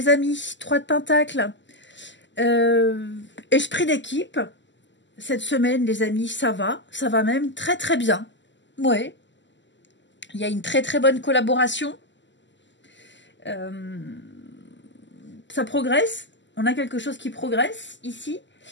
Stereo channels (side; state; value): right; late; 0.54 ms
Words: amis, 3 de Pentacles. Esprit d'équipe. Cette semaine, les amis, ça va même très très bien. Ouais. Il y a une très très bonne collaboration. Ça progresse. On a quelque chose qui progresse ici.